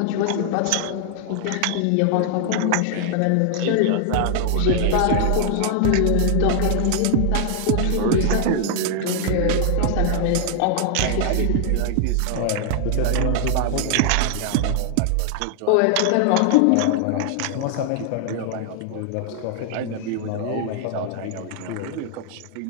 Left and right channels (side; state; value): both; different; correlation 0.00